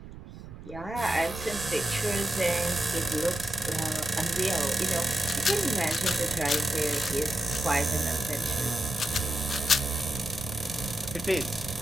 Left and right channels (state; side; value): noise; right; rumble, 14 dB below the sound